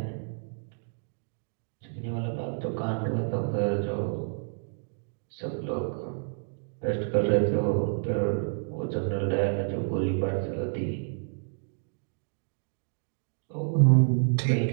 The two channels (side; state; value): left; silent; digital silence